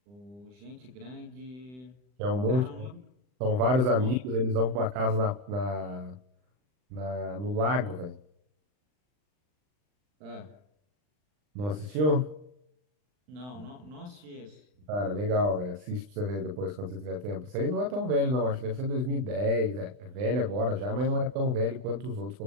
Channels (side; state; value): left; late; 39 ms